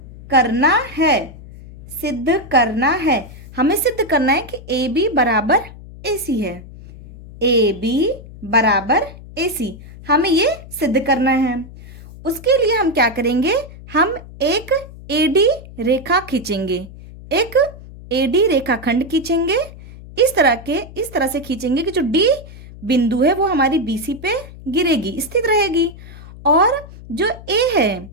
करना है, सिद्ध करना है। हमें सिद्ध करना है कि ए बी बराबर ए सी है। ए बी बराबर ए सी, हमें ये सिद्ध करना है। उसके लिए हम क्या करेंगे? हम एक एडी रेखा खींचेंगे, एक एडी रेखाखंड खींचेंगे। इस तरह से खींचेंगे कि जो डी बिंदु है वो हमारी बीसी पे गिरेगी, स्थित रहेगी। और जो ए है,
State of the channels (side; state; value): left; noise; hum, 17 dB below the sound